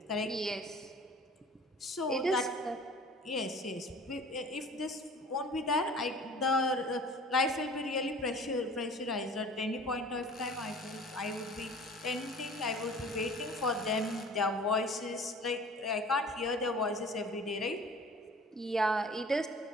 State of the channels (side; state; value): both; normal; correlation 0.45